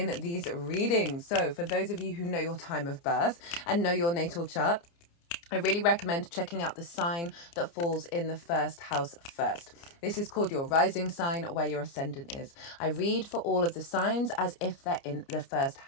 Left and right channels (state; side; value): late; right; 29 ms